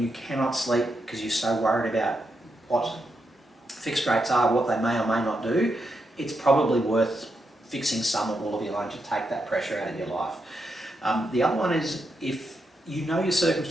you cannot sleep because you're so worried about what fixed rates are, what they may or may not do, it's probably worth fixing some or all of your loan to take that pressure out of your life. The other one is if you know your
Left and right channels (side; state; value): both; normal; correlation 0.83